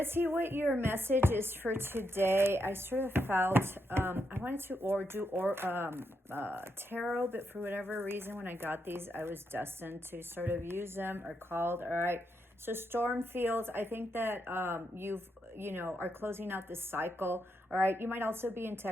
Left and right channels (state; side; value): normal; both; correlation 0.81